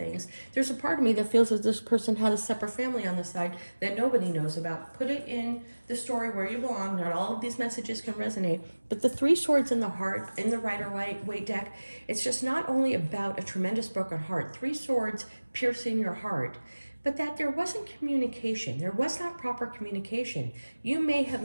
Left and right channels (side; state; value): both; inverted; correlation -1.00